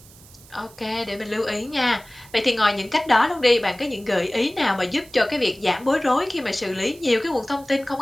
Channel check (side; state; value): right; noise; hiss, 23 dB below the sound